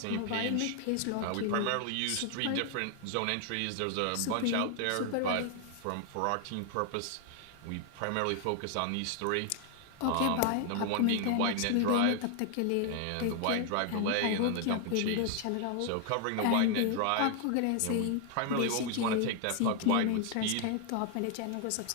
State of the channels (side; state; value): both; different; correlation 0.00